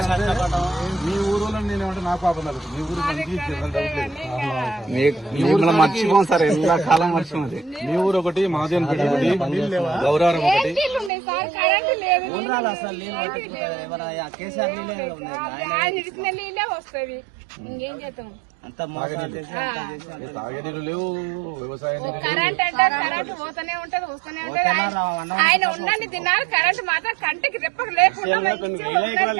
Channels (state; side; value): drops out; left; at 11.1 s